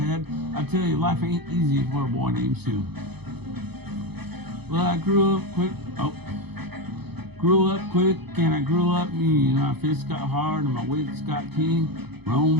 I tell you, life ain't easy for a boy named Sue. Well, I grew up quick and I grew up mean. My fists got hard and my wits got keen.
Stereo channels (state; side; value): late; left; 0.98 ms